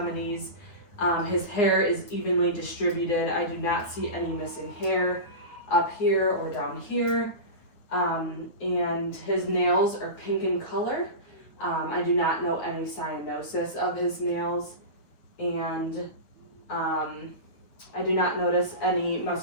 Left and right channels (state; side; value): late; right; 9.3 ms